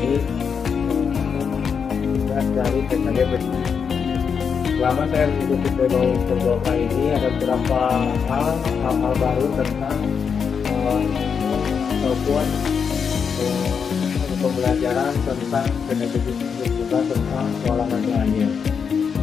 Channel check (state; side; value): quieter; right; 6.4 dB